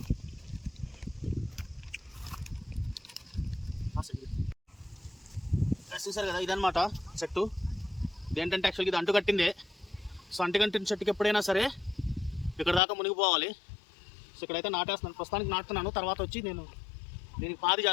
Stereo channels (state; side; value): drops out; right; at 12.8 s